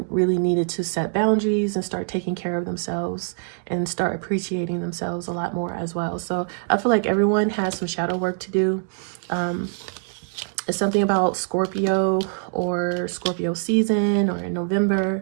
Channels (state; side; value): silent; left; digital silence